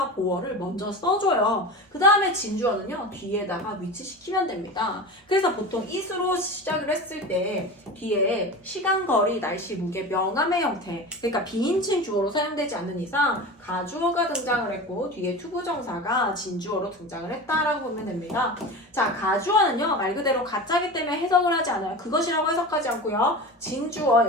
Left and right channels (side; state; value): both; normal; correlation 0.30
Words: 보어를 먼저 써줘요. 그 다음에 진주어는요 뒤에다가 위치시키면 됩니다. 그래서 보통 it으로 시작을 했을 때 뒤에 시간, 거리, 날씨, 무게, 명암의 형태 그러니까 비인칭 주어로 사용되지 않는 이상 가주어가 등장을 했고 뒤에 투부정사가 진주어로 등장을 했다라고 보면 됩니다. 자, 가주어는요 말 그대로 가짜기 때문에 해석을 하지 않아요. 그것이라고 해석하지 않고요. 진주어